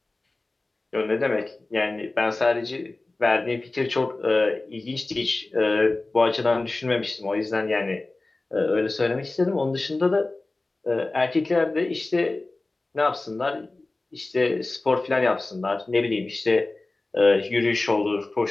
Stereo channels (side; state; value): right; quieter; 3.1 dB